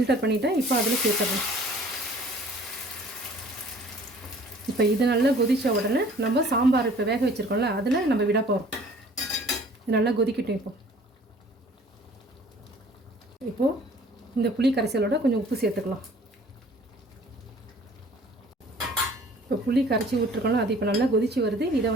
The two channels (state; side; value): normal; both; correlation 0.52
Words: பண்ணிட்டேன். இப்போ அதில் சேர்த்துடலாம். இப்போ இது நல்லா கொதித்த உடனே நம்ம சாம்பார் இப்போ வேக வச்சுருக்கோம்ல அதில் நம்ம விட போகிறோம். இது நல்லா கொதிக்கட்டும். இப்போது இந்த புளி கரைசலோட கொஞ்சம் உப்பு சேர்த்துக்கலாம். இப்போ புளி கரைச்சி விட்டுருக்கோம்ல அது இப்போ நல்லா கொதிச்சு வருது. இதை